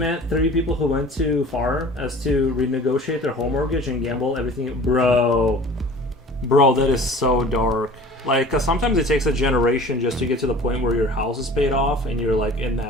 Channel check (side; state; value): both; normal; correlation 0.44